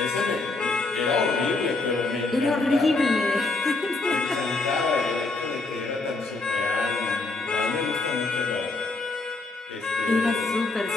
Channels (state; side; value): quieter; right; 3.4 dB